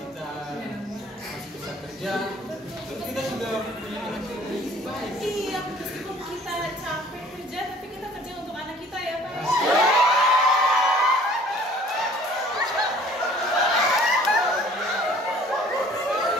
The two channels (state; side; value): normal; both; correlation 0.53